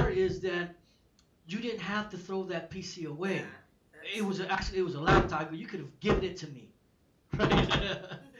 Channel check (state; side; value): identical; both; correlation 1.00